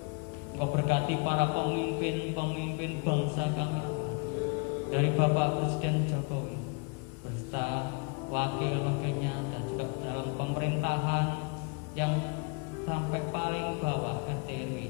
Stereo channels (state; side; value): quieter; right; 34.3 dB